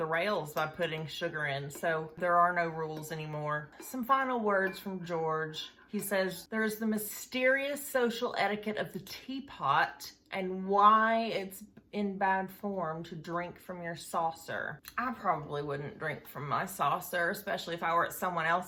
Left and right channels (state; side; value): identical; both; correlation 1.00